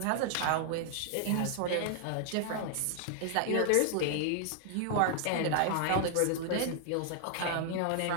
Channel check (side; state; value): both; different; correlation 0.00